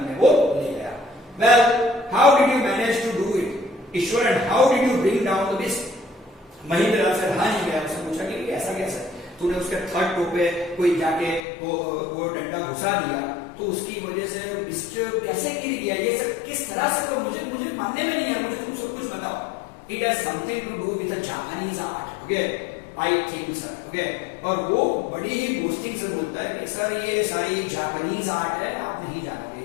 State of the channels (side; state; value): right; drops out; at 11.4 s